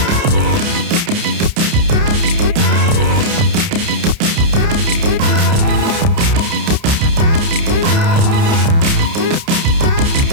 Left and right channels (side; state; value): left; late; 30 ms